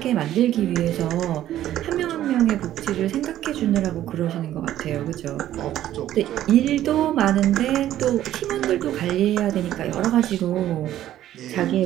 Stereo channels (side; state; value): left; quieter; 12.7 dB